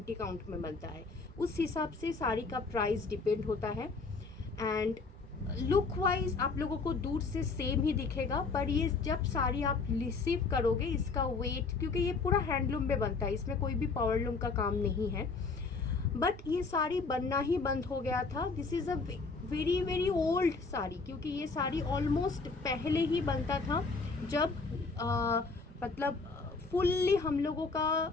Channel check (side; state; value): right; quieter; 4.3 dB